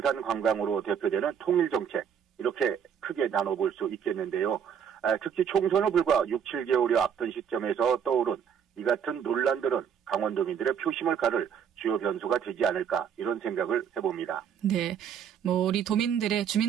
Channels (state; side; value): quieter; left; 7.9 dB